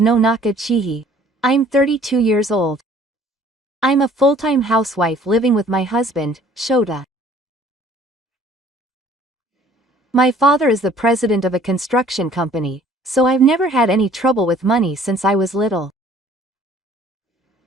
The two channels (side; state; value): both; normal; correlation 0.55